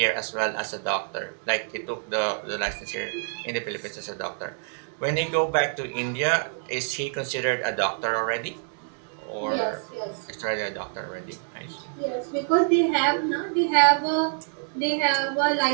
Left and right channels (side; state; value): left; silent; digital silence